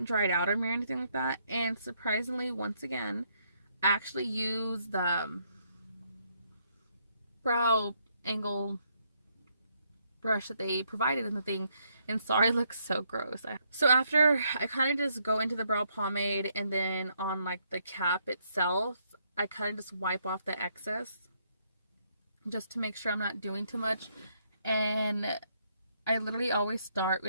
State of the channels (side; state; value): both; inverted; correlation -0.73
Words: dried out on me or anything like that. And surprisingly, once again, I actually use the brow angle brush that they provided in the thing, and sorry, it looks so gross. So after I kind of just go into the brow pomade, and then on like the cap itself, I kind of just wipe off the excess just to make sure I'm not doing too much. And I literally always start